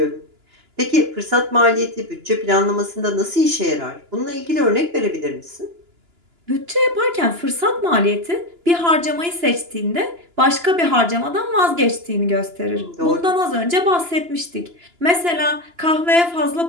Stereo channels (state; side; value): late; left; 2.9 ms